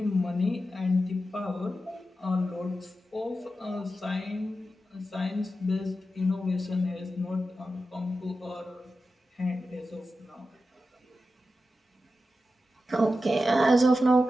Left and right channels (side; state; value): both; normal; correlation 0.91